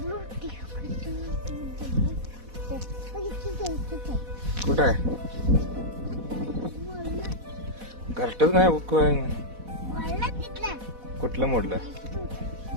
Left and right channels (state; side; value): late; left; 4.1 ms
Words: कुठं आहे घरटच नाही कुठलं मोडलं